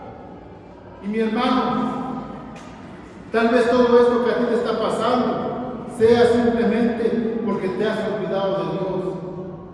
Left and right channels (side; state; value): both; identical; correlation 1.00